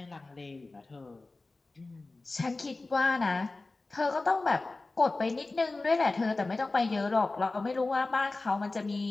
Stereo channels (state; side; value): quieter; right; 3.3 dB